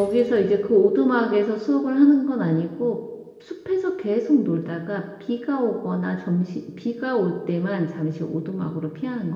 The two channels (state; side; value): identical; both; correlation 1.00